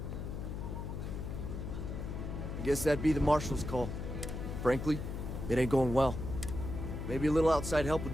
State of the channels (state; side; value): noise; left; hum, 5 dB below the sound